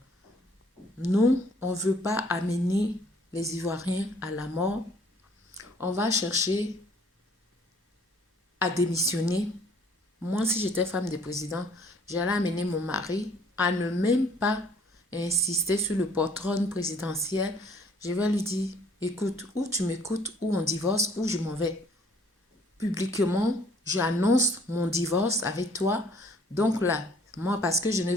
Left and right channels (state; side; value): normal; both; correlation 0.59